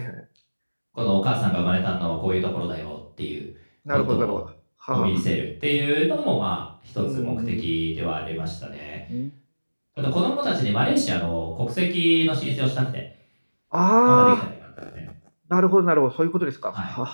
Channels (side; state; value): both; inverted; correlation -1.00